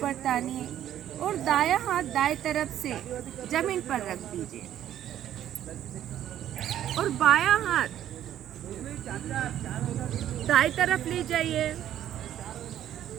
तानिए और दायां हाथ दाएं तरफ से जमीन पर रख दीजिए और बायां हाथ दाएं तरफ ले जाइए।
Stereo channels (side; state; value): left; quieter; 11.4 dB